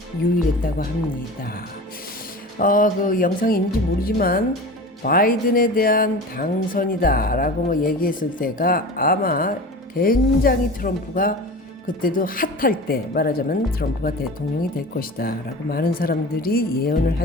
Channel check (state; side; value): normal; both; correlation 0.34